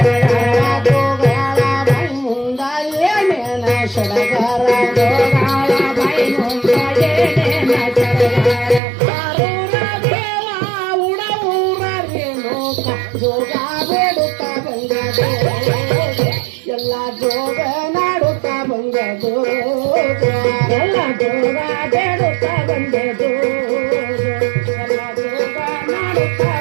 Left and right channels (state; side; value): drops out; left; at 8.8 s